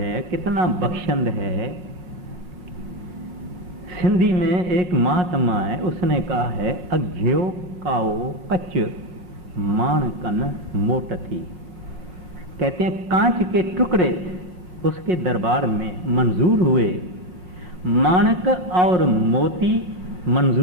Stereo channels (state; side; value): late; left; 5.5 ms